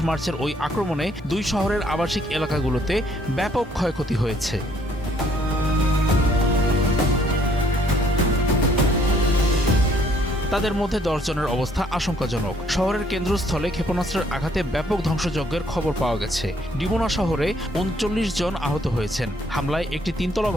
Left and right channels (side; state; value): both; normal; correlation 0.65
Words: মার্চের ওই আক্রমণে দুই শহরের আবাসিক এলাকাগুলোতে ব্যাপক ক্ষয়ক্ষতি হয়েছে। তাদের মধ্যে ১০ জনের অবস্থা আশঙ্কাজনক। শহরের কেন্দ্রস্থলে ক্ষেপণাস্ত্রের আঘাতে ব্যাপক ধ্বংসযজ্ঞের খবর পাওয়া গেছে। ডিমোনা শহরে ৩৯ জন আহত হয়েছেন। হামলায় একটি তিনতলা